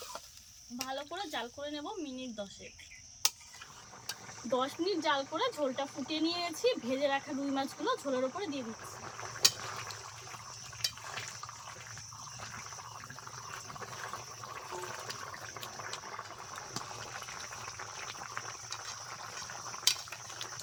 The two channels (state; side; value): identical; both; correlation 1.00